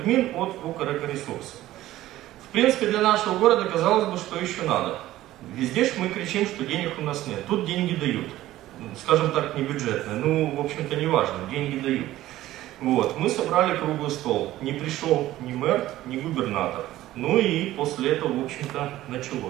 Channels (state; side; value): quieter; left; 15.1 dB